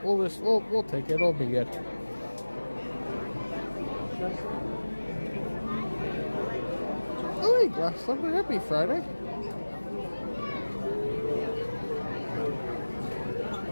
We'll take it. It'll be good. Oh, hey, Glass Slipper. Happy Friday.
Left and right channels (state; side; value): inverted; both; correlation -1.00